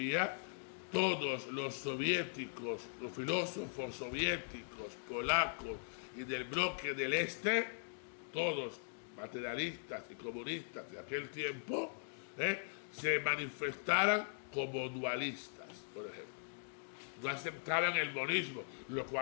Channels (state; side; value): silent; right; digital silence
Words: todos los soviéticos, los filósofos soviéticos, polacos y del bloque del Este, todos materialistas y comunistas de aquel tiempo, se manifestaran como dualistas, por ejemplo. no aceptaban el monismo, lo